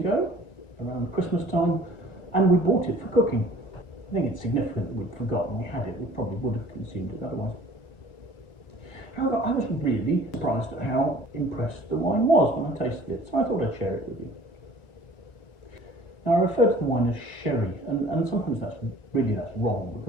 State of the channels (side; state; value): right; late; 1.9 ms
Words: around Christmas time, and we bought it for cooking. I think it's significant that we'd forgotten we had it. We probably would have consumed it otherwise. However, I was really surprised at how impressed the wine was when I tasted it, so I thought I'd share it with you. Now, I refer to the wine as sherry, and sometimes that's wrong,